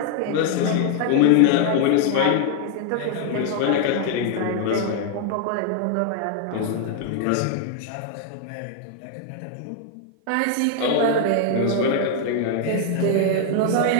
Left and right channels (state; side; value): different; both; correlation 0.00